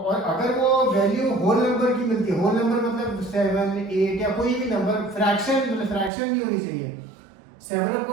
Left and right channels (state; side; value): drops out; left; at 6.1 s